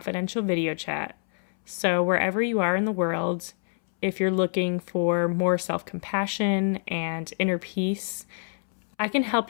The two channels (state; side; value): silent; right; 61 dB below the other